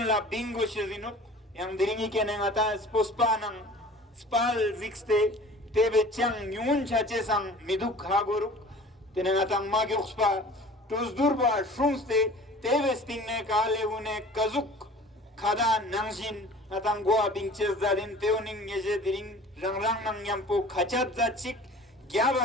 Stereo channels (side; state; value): both; normal; correlation 0.44